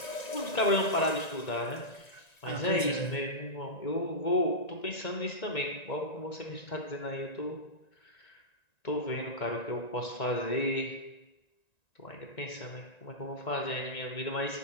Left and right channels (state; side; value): late; right; 1.9 ms